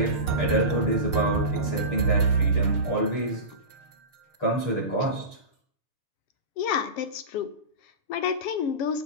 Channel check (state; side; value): late; right; 6.5 ms